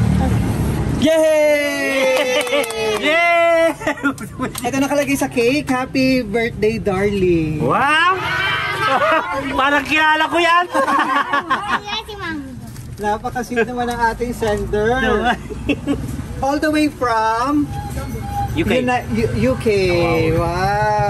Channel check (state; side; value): identical; both; correlation 1.00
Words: Yay! Yay! Ito nakalagay sa cake. Happy birthday, darling. Wow! Parang kilala ko yan! Napakasit naman ang ating sender. All the way from UK. UK.